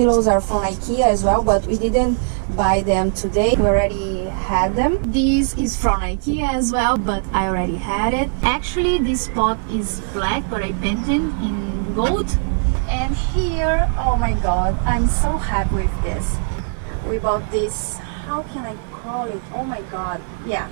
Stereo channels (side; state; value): left; silent; 57 dB below the other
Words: are from Ikea as well, but we didn't buy them today. We already had them. This is from Ikea as well, but I already had it. Actually, this pot is black, but I painted in gold. And here, oh my god, I'm so happy with this. We bought this, how can I call it? Oh my god, yeah,